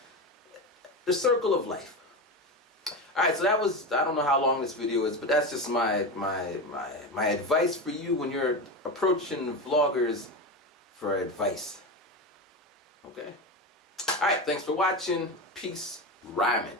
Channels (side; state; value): both; normal; correlation 0.20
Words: the circle of life. Alright, so that was, I don't know how long this video is, but that's just my advice for you when you're approaching vloggers for advice. Okay? Alright, thanks for watching. Peace, Ryman.